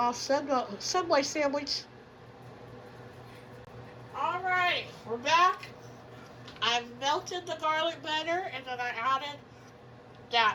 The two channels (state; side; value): identical; both; correlation 1.00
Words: Subway sandwich. Alright, we're back. I've melted the garlic butter and then I added